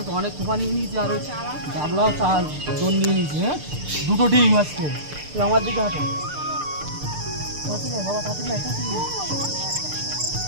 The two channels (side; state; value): left; late; 6.7 ms